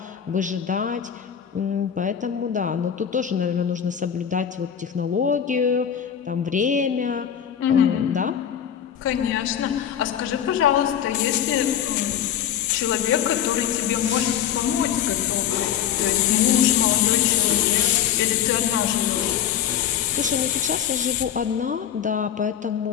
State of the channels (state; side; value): quieter; right; 9.4 dB